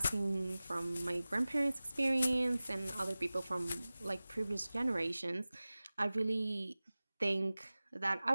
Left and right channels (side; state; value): both; inverted; correlation -0.98